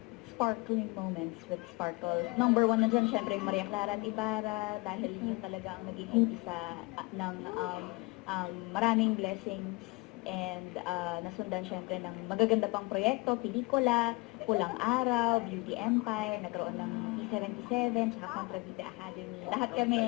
sparkling moments with Sparkle. Number one na dyan, syempre, Maria Clara at Ibarra, dahil yun talaga ang naging umpisa ng maraming blessings and nasundan syempre ng magaganda pang proyekto, pelikula, Pulang Araw, Beauty Empire, nagkaroon ng P77, saka Contravita Academy. Lahat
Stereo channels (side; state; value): right; quieter; 25.9 dB